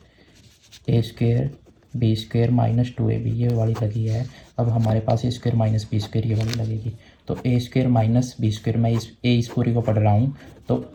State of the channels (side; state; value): both; identical; correlation 1.00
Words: a² b² - 2ab, ये वाली लगी है। अब हमारे पास a² - b², ये वाली लगेगी। तो a² - b², मैं इस पूरी को पढ़ रहा हूँ, तो